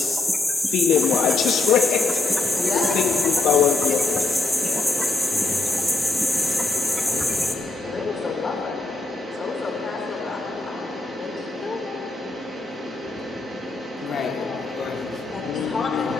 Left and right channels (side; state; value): right; quieter; 3.4 dB